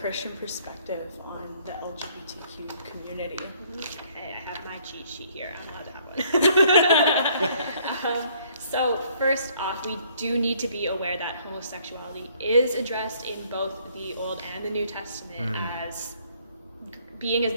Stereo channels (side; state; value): both; inverted; correlation -0.63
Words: perspective on the LGBTQ community? Okay, I have my cheat sheet here. I'm allowed to have one. So first off, we do need to be aware that homosexuality is addressed in both the Old and the New Testament as being as